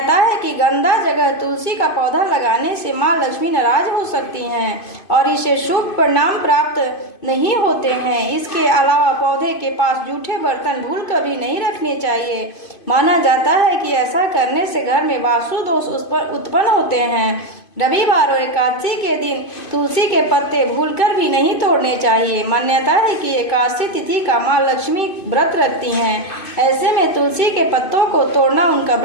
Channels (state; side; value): late; right; 2.5 ms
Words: है कि गंदा जगह तुलसी का पौधा लगाने से माँ लक्ष्मी नाराज हो सकती हैं और इसे शुभ परिणाम प्राप्त नहीं होते हैं। इसके अलावा पौधे के पास जूठे बर्तन भूल कभी नहीं रखने चाहिए। माना जाता है कि ऐसा करने से घर में वास्तु दोष उत्पन्न होते हैं। रविवार और एकादशी के दिन तुलसी के पत्ते भूलकर भी नहीं तोड़ने चाहिए। मान्यता है कि एकादशी तिथि का माँ लक्ष्मी व्रत रखती हैं। ऐसे में तुलसी के पत्तों को तोड़ना उनका